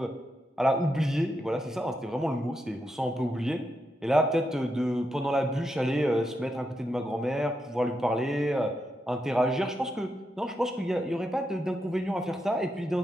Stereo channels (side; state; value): both; normal; correlation 0.84